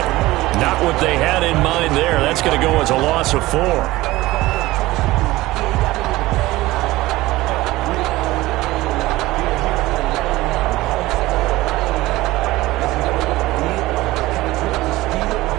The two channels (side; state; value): left; quieter; 18.5 dB